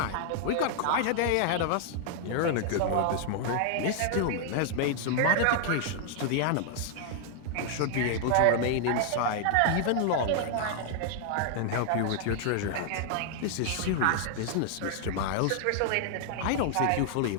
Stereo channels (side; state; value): both; different; correlation 0.00